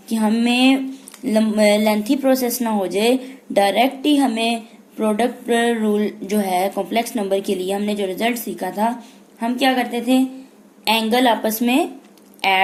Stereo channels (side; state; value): both; identical; correlation 1.00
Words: कि हमें लेंथी प्रोसेस ना हो जाए, डायरेक्ट ही हमें प्रोडक्ट रूल जो है कॉम्प्लेक्स नंबर के लिए हमने जो रिजल्ट सीखा था, हम क्या करते थे, एंगल आपस में